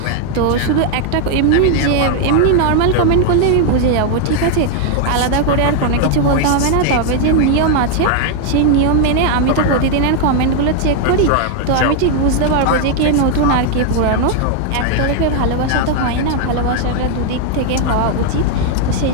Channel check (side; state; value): both; different; correlation 0.00